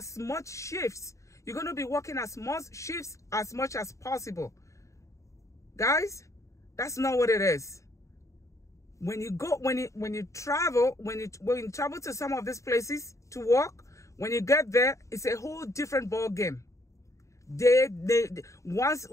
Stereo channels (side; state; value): right; late; 0.15 ms